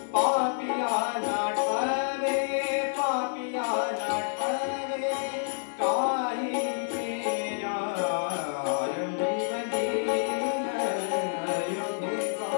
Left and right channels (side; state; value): right; silent; digital silence